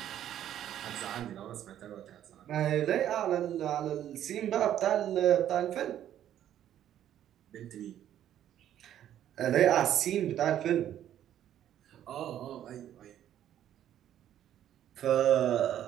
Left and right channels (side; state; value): left; quieter; 11.1 dB